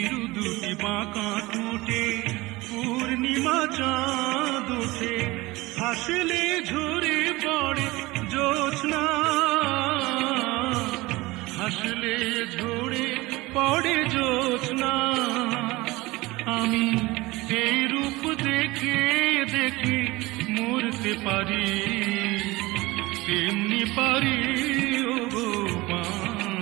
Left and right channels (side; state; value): left; quieter; 21.0 dB